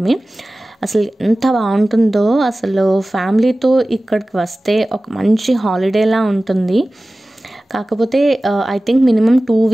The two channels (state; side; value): normal; both; correlation 0.97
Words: అసలు ఎంత బాగుంటుందో. అసలు ఫ్యామిలీతో ఇక్కడికి వస్తే ఒక మంచి హాలిడేలా ఉంటుంది. కాకపోతే ఐ థింక్ మినిమం 2